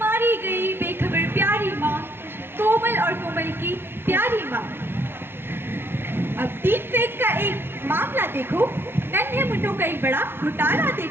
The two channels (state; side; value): late; left; 0.11 ms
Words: गई बेखबर प्यारी माँ, कोमल और कोमल की प्यारी माँ। अब डीप फेक का एक मामला देखो, नन्हे मुंडों का एक बड़ा घोटाला